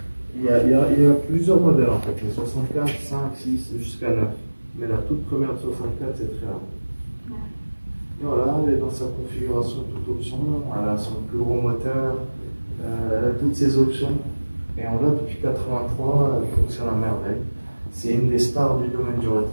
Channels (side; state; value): both; inverted; correlation -1.00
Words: Il y a plusieurs modèles en fait, les 64, 5, 6 jusqu'à 9. Mais la toute première de 64 c'est très rare. Voilà, elle est dans sa configuration toute option, elle a son plus gros moteur, elle a toutes ses options. Et on l'a depuis 83, elle fonctionne à merveille. C'est une des stars du domaine du